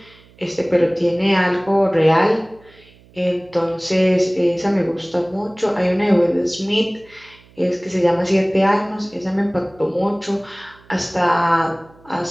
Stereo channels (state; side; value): noise; right; hum, 27 dB below the sound